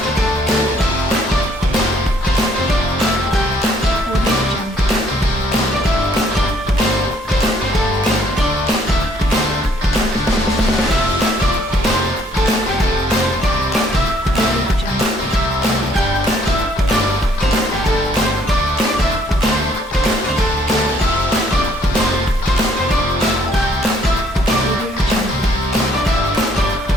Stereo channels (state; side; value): normal; both; correlation 0.65